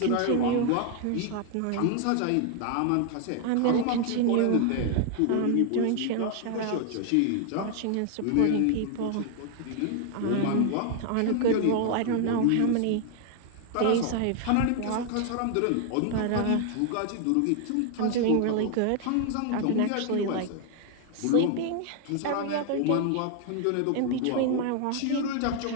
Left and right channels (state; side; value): different; both; correlation 0.00